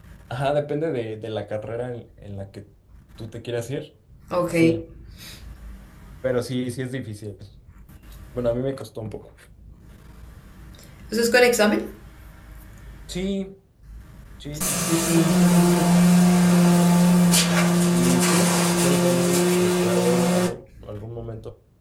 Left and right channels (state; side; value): identical; both; correlation 1.00